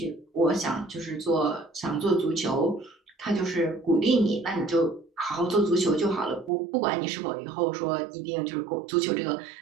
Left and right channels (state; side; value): drops out; left; at 6.5 s